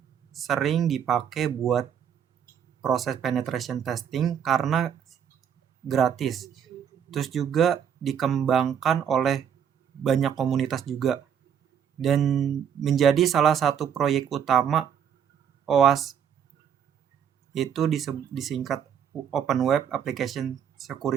sering dipakai buat proses penetration testing karena gratis. Terus juga dikembangkan oleh banyak komunitas juga dan menjadi salah satu proyek utama OWASP, itu disingkat Open Web Application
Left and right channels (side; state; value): left; quieter; 8.4 dB